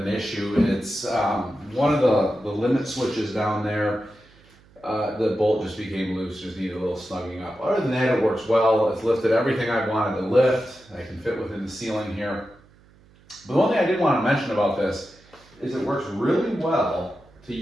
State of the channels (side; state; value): right; noise; hum, 28 dB below the sound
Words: issue, it's one of the limit switches down there. The bolt just became loose, just needed a little snugging up. Other than that, it works well. It's lifted everything I wanted to lift. I can fit within the ceiling here. But the one thing I did want to mention about this is it works really well to